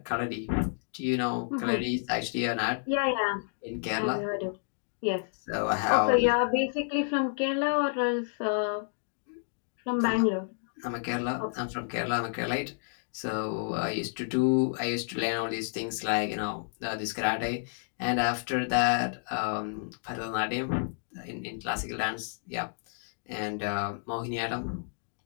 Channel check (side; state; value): right; silent; digital silence